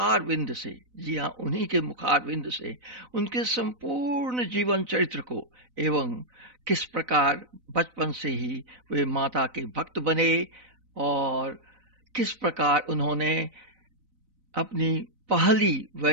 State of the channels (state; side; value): late; left; 4.0 ms